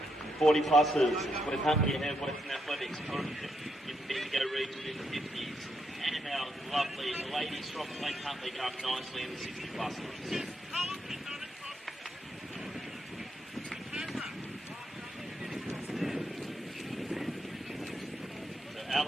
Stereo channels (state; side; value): normal; both; correlation 0.80